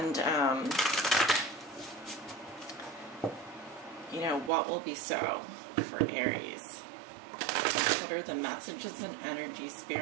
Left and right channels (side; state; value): left; drops out; at 4.5 s